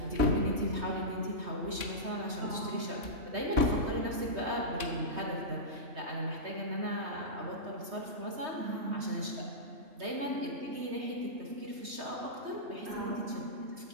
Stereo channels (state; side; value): late; left; 3.2 ms